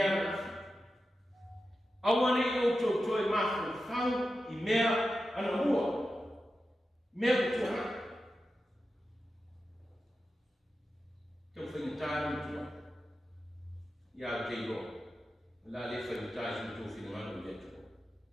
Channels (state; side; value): normal; both; correlation 0.91